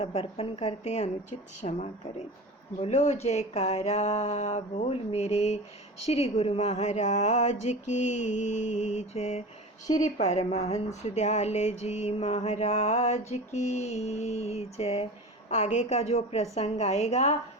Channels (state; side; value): normal; both; correlation 0.32